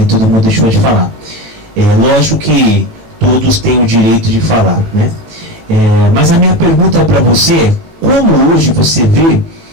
e todo mundo deixou de falar. Lógico que todos têm o direito de falar, né? Mas a minha pergunta para você é como hoje você vê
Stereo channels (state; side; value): late; left; 17 ms